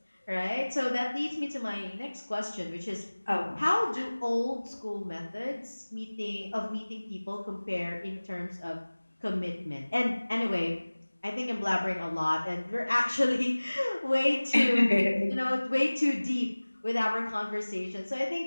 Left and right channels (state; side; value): inverted; both; correlation -1.00